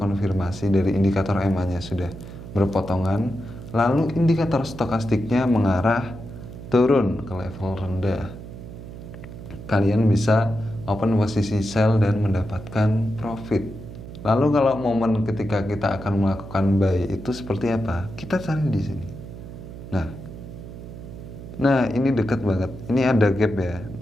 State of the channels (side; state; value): right; noise; hum, 13 dB below the sound